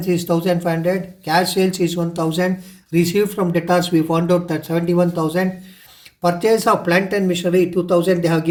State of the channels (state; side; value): identical; both; correlation 1.00